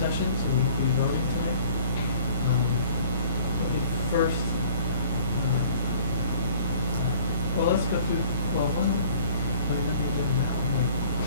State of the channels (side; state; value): both; inverted; correlation -0.50